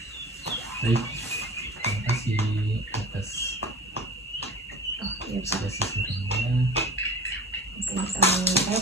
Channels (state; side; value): normal; both; correlation 0.38